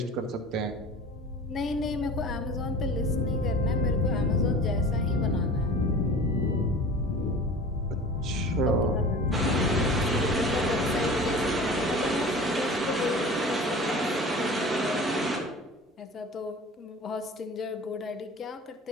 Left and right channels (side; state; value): both; normal; correlation 0.39